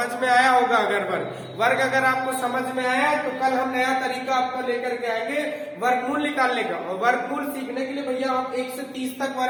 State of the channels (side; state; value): both; identical; correlation 1.00